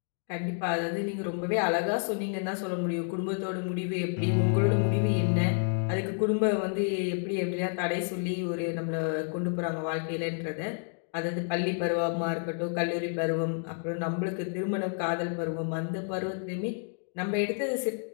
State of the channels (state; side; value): silent; right; 57 dB below the other